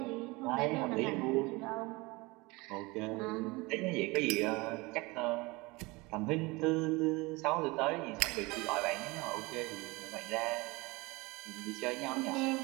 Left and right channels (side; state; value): left; quieter; 23.9 dB